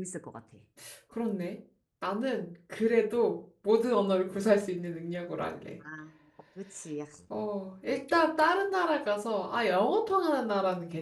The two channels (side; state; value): both; identical; correlation 1.00